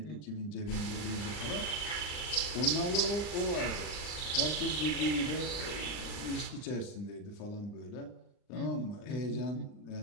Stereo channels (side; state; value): right; late; 39 ms